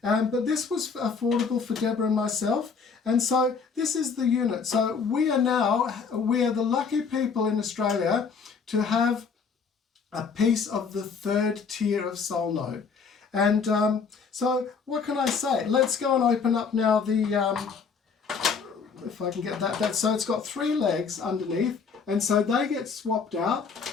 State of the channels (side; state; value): right; quieter; 5.6 dB